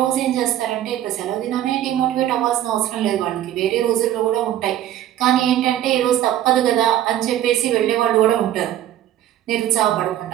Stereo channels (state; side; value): quieter; left; 12.2 dB